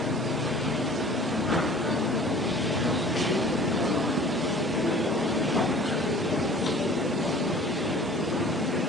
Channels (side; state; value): both; normal; correlation 0.46